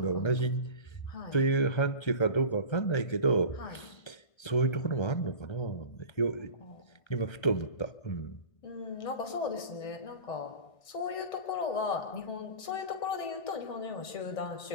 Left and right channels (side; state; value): right; late; 1.3 ms